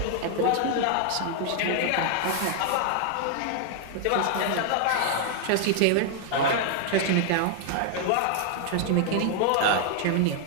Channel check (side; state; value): both; different; correlation 0.00